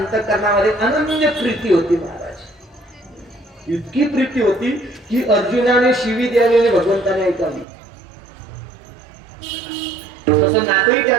अनन्य प्रीती होती महाराज. इतकी प्रीती होती की अर्जुनाने शिवी द्यावी आणि भगवंताने ऐकावी. तसं नातंही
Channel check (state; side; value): drops out; left; at 7.7 s